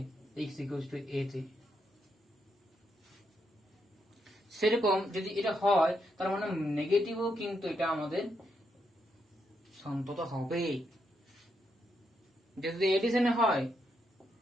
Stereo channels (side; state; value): both; normal; correlation 0.80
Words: x ইকুয়ালস টু a তে। সেরকম যদি এটা হয়, তার মানে নেগেটিভও কিন্তু এটা আমাদের সন্ততা হবে। যদি এডিশনে হয়